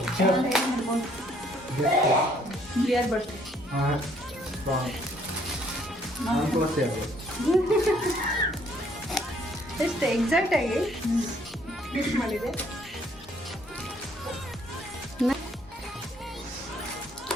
ಕ್ಲಿಯರ್ ಬರ್ತದೆ. ಹಾಂ ಎಷ್ಟು ಎಕ್ಸಾಕ್ಟ್ ಆಗಿ ಫಿಕ್ಸ್ ಮಾಡಿದೆ.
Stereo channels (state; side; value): normal; both; correlation 0.64